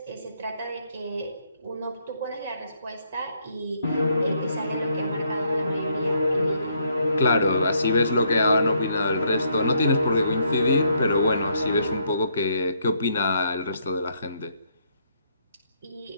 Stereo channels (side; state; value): both; inverted; correlation -0.72